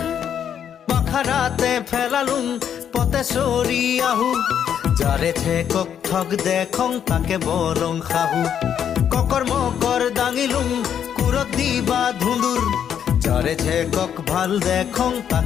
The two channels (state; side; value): quieter; right; 8.8 dB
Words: বাখাৰাতে ফেলালুম পতে চৰি আহো যাৰে ঠেকক ঠগ দেখং তাকে বৰং খাহু ককৰ মকৰ দাঙিলুম কুৰত দিবা ধুন্দুৰ যাৰে ঠেকক ভাল দেখং